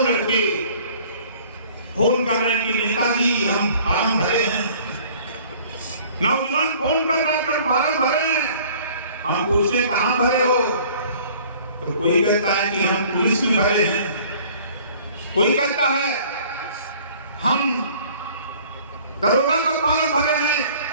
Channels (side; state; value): both; inverted; correlation -0.52